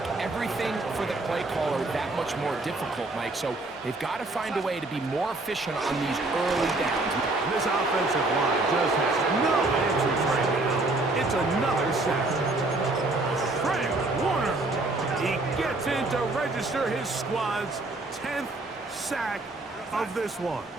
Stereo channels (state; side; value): quieter; left; 3.0 dB